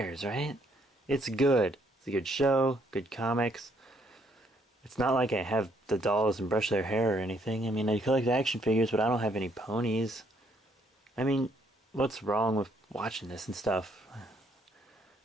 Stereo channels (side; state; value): both; normal; correlation 0.69